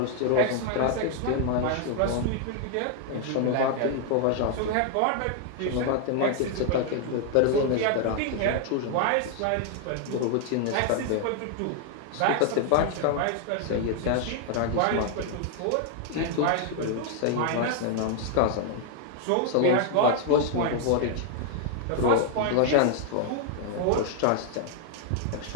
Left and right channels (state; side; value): different; both; correlation 0.00